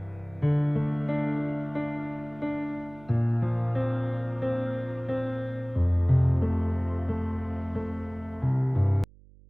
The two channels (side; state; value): right; noise; hum, 24 dB below the sound